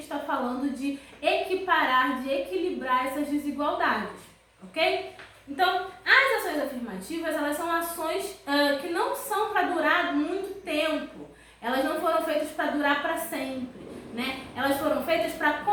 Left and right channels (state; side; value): identical; both; correlation 1.00